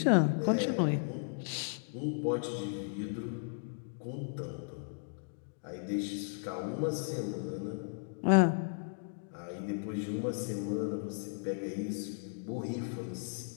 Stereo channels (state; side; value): silent; right; digital silence